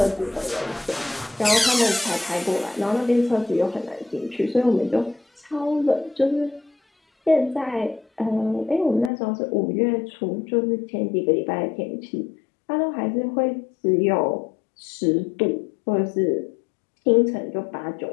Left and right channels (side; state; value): right; drops out; at 9.1 s